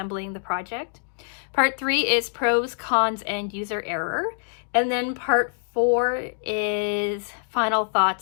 the project. Part 3 is pros, cons, and user error. And then part 4 is final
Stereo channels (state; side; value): silent; right; digital silence